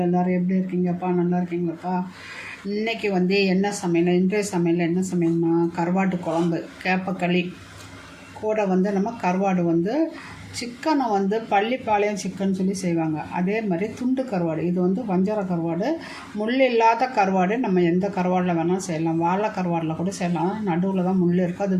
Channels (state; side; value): identical; both; correlation 1.00